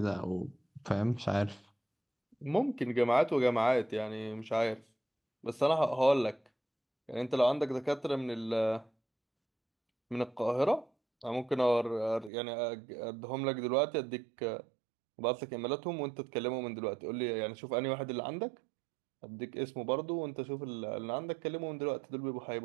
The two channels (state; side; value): drops out; left; at 12.3 s